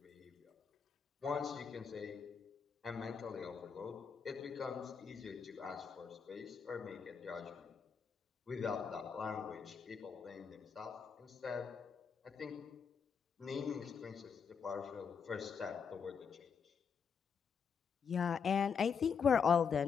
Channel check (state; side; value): quieter; right; 6.4 dB